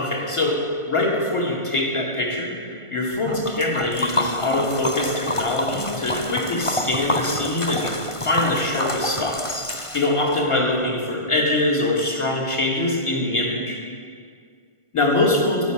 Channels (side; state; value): right; late; 1.5 ms